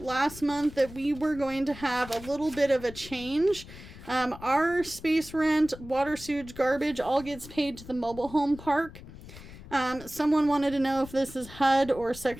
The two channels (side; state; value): left; noise; rumble, 16 dB below the sound